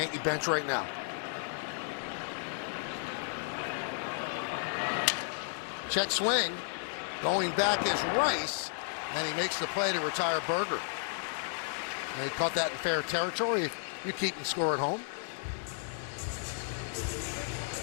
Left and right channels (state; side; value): silent; right; digital silence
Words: bench right now. Check swing. Going back is Rice, and he makes the play to retire Berger. And he caught that in fair territory. You're keeping score at home.